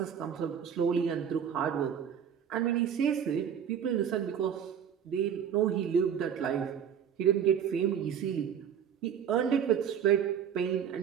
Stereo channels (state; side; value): quieter; left; 8.3 dB